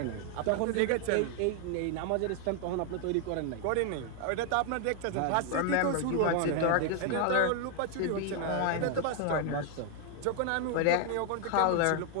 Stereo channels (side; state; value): both; different; correlation 0.00